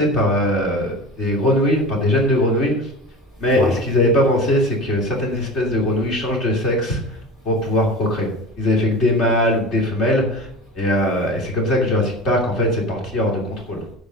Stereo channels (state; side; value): normal; both; correlation 0.33